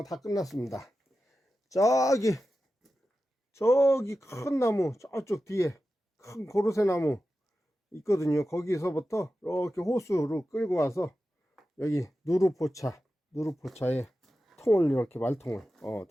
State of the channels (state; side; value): normal; both; correlation 0.92